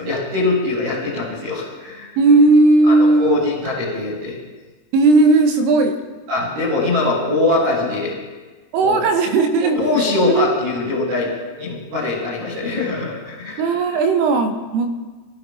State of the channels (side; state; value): left; late; 26 ms